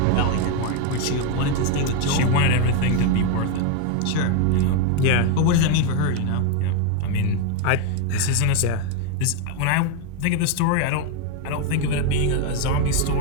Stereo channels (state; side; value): different; both; correlation 0.01